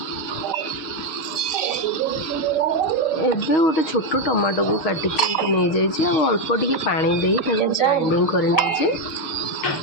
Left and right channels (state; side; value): late; right; 6.3 ms